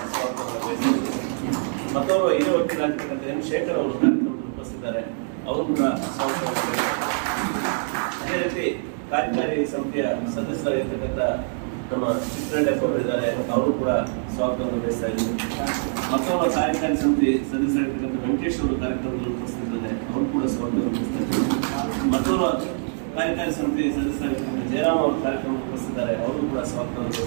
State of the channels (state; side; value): silent; left; 62 dB below the other